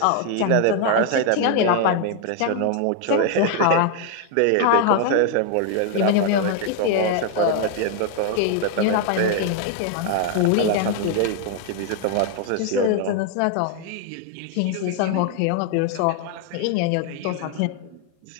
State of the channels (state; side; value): different; both; correlation 0.00